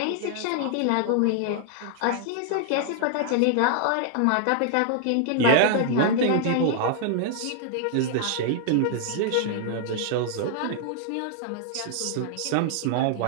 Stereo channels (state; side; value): different; both; correlation 0.00